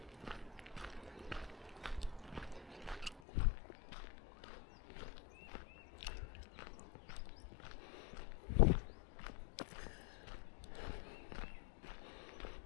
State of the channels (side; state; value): right; drops out; at 3.2 s